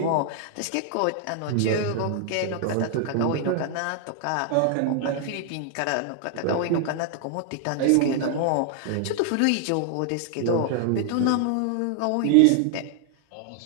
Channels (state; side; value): different; both; correlation 0.00